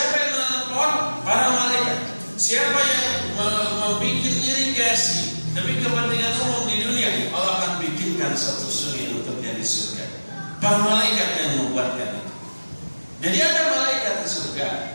yang menanam pohon? Para malaikat. Siapa yang membuat irigasi demi kepentingan umum di dunia, Allah akan bikinkan satu sungai untuknya di surga. Para malaikat yang membuatkan itu. Jadi ada malaikat di surga,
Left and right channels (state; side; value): inverted; both; correlation -1.00